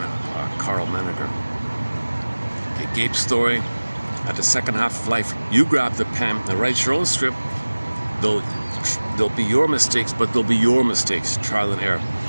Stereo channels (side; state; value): both; inverted; correlation -1.00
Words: Carl Menninger. Okay, Gabe's story. At the second half of life, you grab the pen and write your own script. There'll be your mistakes, but they'll be your mistakes, trial and error.